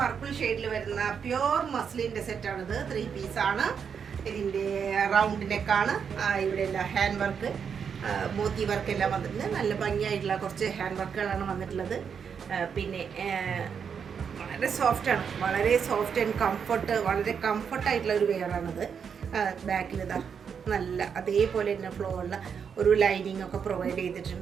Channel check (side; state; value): left; quieter; 6.9 dB